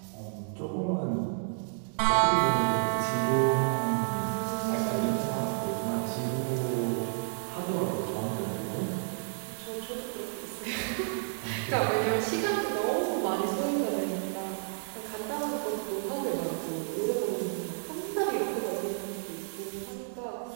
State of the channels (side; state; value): left; silent; 57 dB below the other